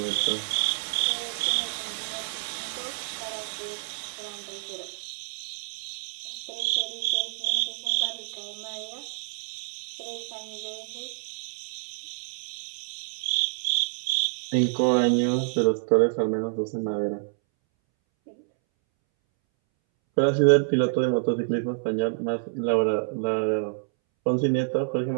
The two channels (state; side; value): silent; left; 60 dB below the other